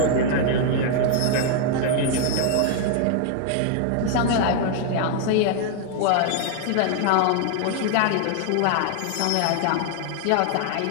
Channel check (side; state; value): both; different; correlation 0.00